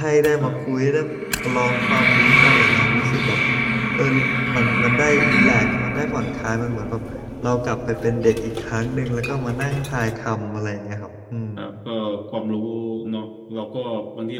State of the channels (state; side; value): identical; both; correlation 1.00